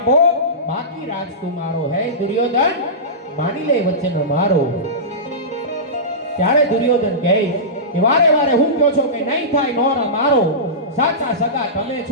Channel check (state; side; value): normal; both; correlation -0.18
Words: બાકી રાજ તુમારો. હે દુર્યોધન માની લે વચન મારો. ત્યારે દુર્યોધન કહે કે વારે વારે હું કહો છો કે નહીં થાય નોરા મારો, સાચા સગા તમે